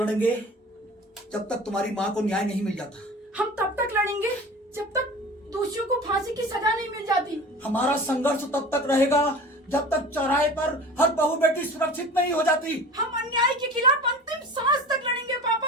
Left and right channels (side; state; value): both; normal; correlation 0.38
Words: जब तक तुम्हारी माँ को न्याय नहीं मिल जाता। हम तब तक लड़ेंगे जब तक दोषियों को फांसी की सजा नहीं मिल जाती। हमारा संघर्ष तब तक रहेगा जब तक चौराहे पर हर बहू बेटी सुरक्षित नहीं हो जाती। हम अन्याय के खिलाफ अंतिम सांस तक लड़ेंगे